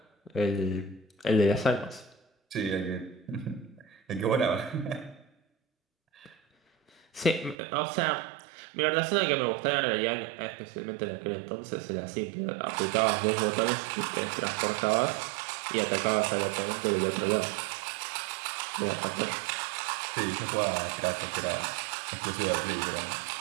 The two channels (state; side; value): drops out; left; at 7.6 s